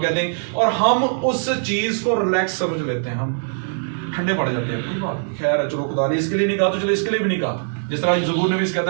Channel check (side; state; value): left; silent; digital silence